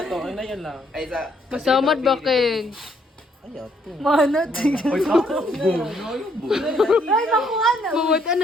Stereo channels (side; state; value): both; normal; correlation 0.69